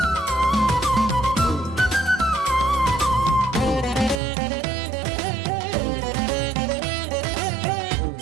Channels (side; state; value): left; drops out; at 4.2 s